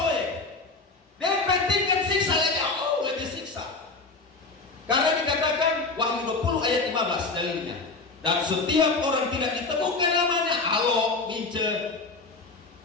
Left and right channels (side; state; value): right; quieter; 3.8 dB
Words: dia pentingkan siksa lebih siksa. Karena dikatakan Wahyu 20 ayat 15 dalilnya. Dan setiap orang tidak ditemukan namanya, Alo, Mince,